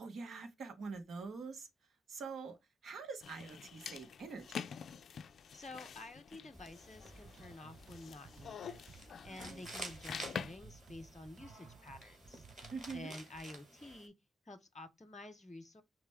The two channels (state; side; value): normal; both; correlation 0.73